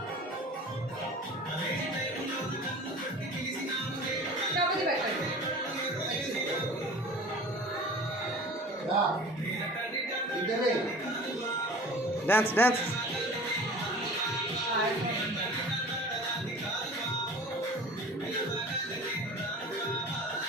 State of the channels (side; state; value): both; normal; correlation 0.41